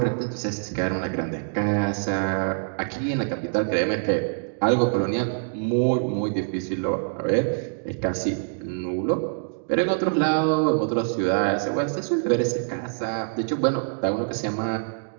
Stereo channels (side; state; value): left; silent; digital silence